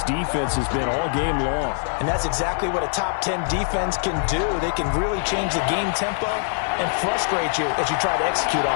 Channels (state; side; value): silent; right; digital silence